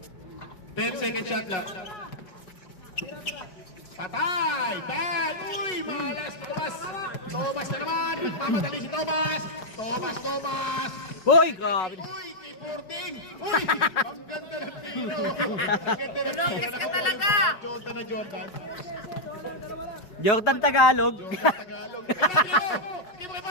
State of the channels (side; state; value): right; late; 5.4 ms